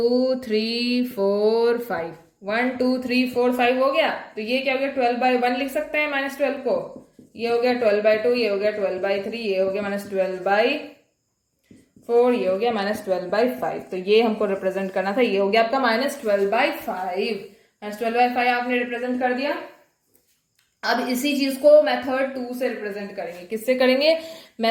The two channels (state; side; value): identical; both; correlation 1.00